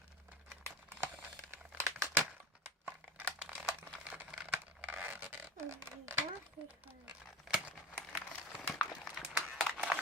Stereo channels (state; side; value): normal; both; correlation 0.34